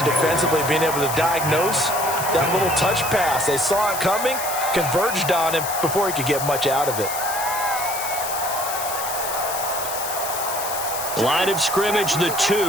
defensively, being able to diagnose that little touch pass. They saw it coming, converged on him before he could get much out of it. Line of scrimmage, the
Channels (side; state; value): left; noise; hiss, 6 dB below the sound